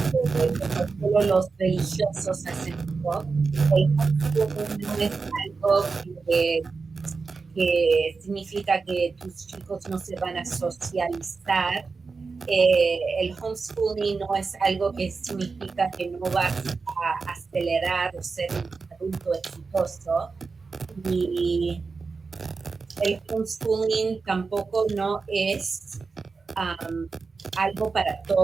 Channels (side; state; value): left; quieter; 4.5 dB